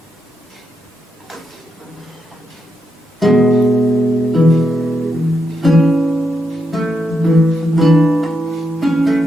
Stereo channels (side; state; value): both; normal; correlation 0.83